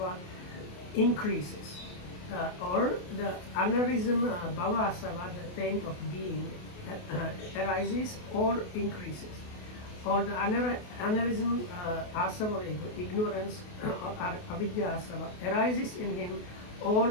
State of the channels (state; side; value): late; right; 28 ms